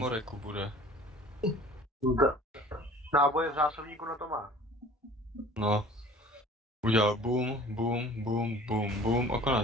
bude. Náboje v zásobníku na to má. No. Udělal boom, boom, boom, boom, boom a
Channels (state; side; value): normal; both; correlation 0.48